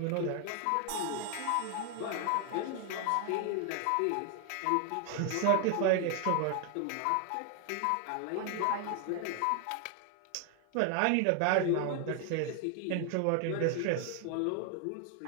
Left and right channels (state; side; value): different; both; correlation 0.00